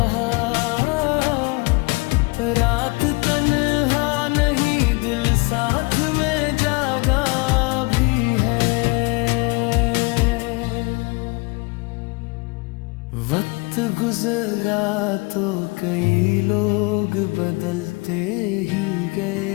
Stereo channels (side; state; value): right; quieter; 27.6 dB